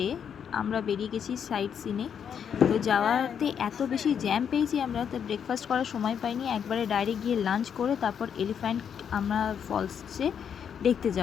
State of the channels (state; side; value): quieter; right; 7.8 dB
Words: আমরা বেরিয়ে গেছি সাইট সিনে। তো যাওয়াতে এত বেশি জ্যাম পেয়েছি আমরা, তো ব্রেকফাস্ট করার সময় পাইনি। একবারে ডাইরেক্ট গিয়ে লাঞ্চ করে তারপর এলিফ্যান্ট আমরা ফলসে দেখতে